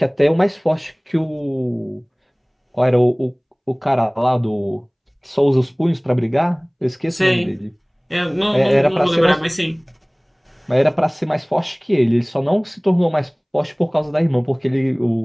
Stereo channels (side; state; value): both; identical; correlation 1.00